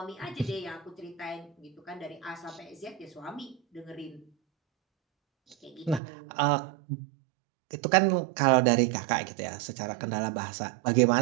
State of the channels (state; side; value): drops out; left; at 6.0 s